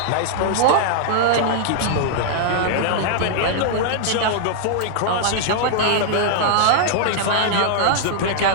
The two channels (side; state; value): both; different; correlation -0.01